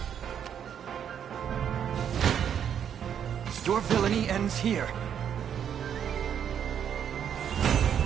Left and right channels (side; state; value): left; quieter; 8.7 dB